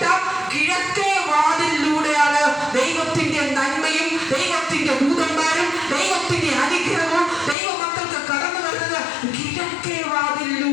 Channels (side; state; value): right; drops out; at 7.6 s